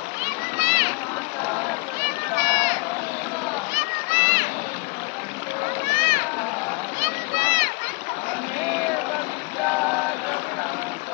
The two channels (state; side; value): quieter; right; 29.7 dB